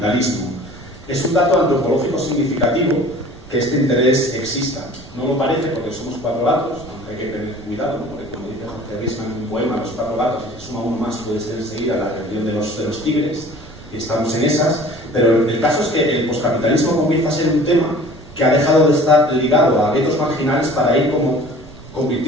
Es un dato antropológico significativo que este interés exista. No lo parece porque somos 4 gatos, aunque hay que tener cuidado, ¿no? Porque como dice Jorge Riesman en un poema, los 4 gatos, si se suma uno más puede ser enseguida la rebelión de los tigres, y estamos en esas. Pero el caso es que el poscapitalismo comienza a ser un tema que ha dejado de estar ligado a guetos marginales para ir como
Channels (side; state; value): right; noise; rumble, 19 dB below the sound